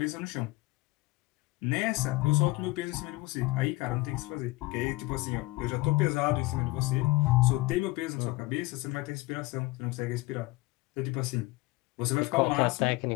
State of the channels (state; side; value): quieter; right; 21.2 dB